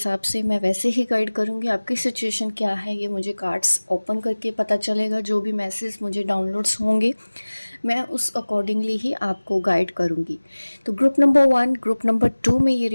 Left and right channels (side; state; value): both; inverted; correlation -1.00